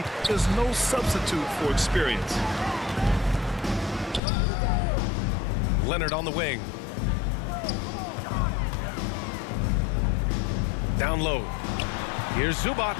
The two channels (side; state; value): right; drops out; at 4.2 s